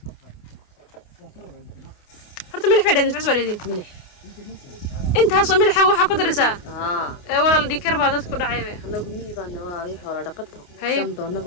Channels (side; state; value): right; late; 28 ms